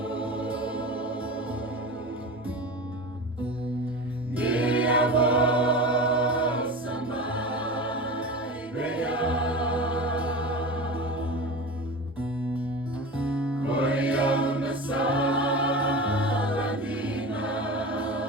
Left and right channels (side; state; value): both; normal; correlation 0.30